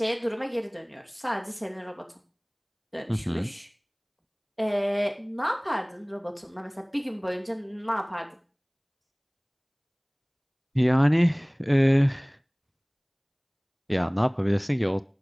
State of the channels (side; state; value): both; identical; correlation 1.00